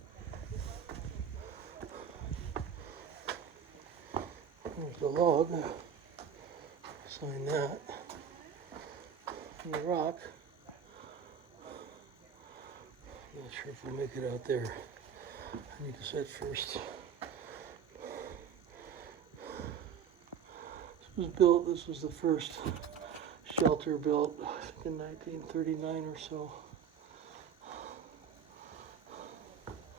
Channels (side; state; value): left; quieter; 7.7 dB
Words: There's the log. Sign that. And the rock. Not sure if we'll make it out there. I need to set first. This was the first shelter built in 1939 or so.